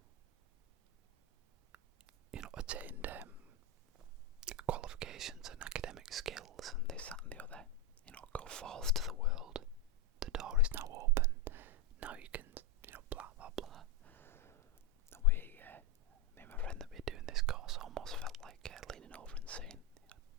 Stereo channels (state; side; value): normal; both; correlation 0.06